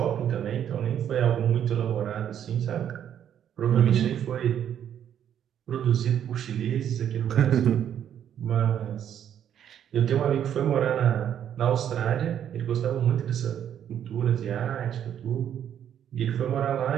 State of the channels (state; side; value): quieter; left; 9.6 dB